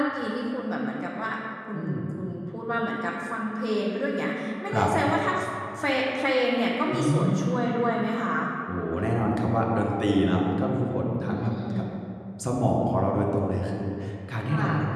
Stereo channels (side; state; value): both; identical; correlation 1.00